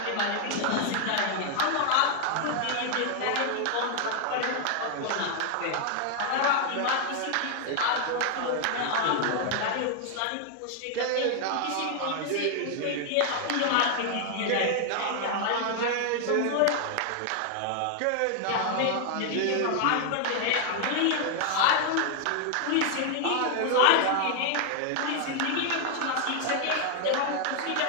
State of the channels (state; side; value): different; both; correlation 0.00